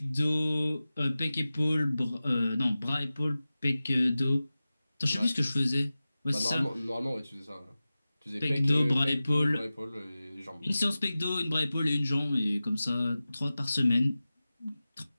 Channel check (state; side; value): inverted; both; correlation -0.96